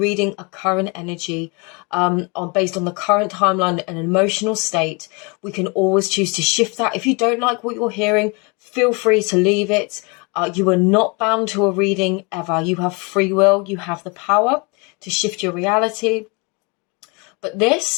a current energy based on the current timeline and emotional state. We can always choose to shift that. If you don't like what you're hearing, feel free to leave it. You are not bound to a reading ever. You have free will. You have the power to shift your reality. But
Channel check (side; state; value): right; quieter; 30.3 dB